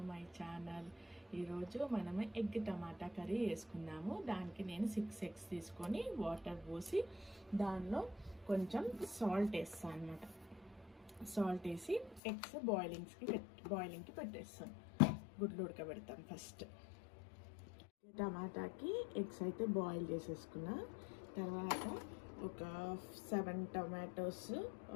my channel. ఈరోజు మనము ఎగ్ టమాటా కర్రీ వేసుకుందాము. దానికి నేను 6 eggs తీసుకొని వాటర్ పోసి దానిలో కొంచెం సాల్ట్ వేస్తాను అనమాట. సాల్ట్ వేసి ఎగ్స్ బాయిలింగ్కి పెట్టేస్తాను. గుడ్లు ఉడకబెడతాను. ఫస్ట్ టమాటాకి ఎగ్స్ అయితే బాయిల్ చేసేసుకున్నా. తర్వాత ఒక 7 tomatoes,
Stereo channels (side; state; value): right; drops out; at 12.2 s